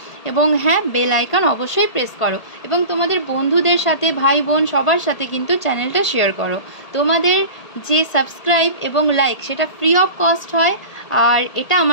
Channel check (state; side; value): late; right; 1.8 ms